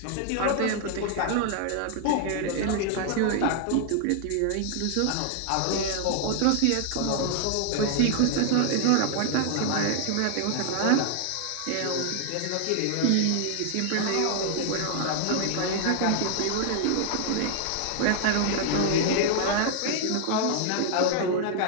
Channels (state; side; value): different; both; correlation 0.00